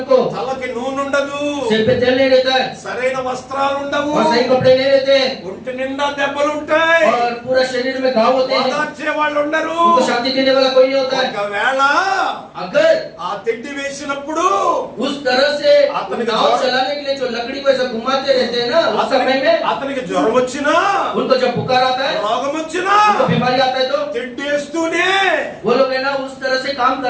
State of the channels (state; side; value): identical; both; correlation 1.00